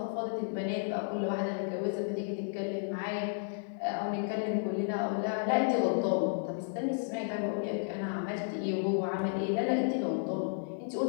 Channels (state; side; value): silent; right; digital silence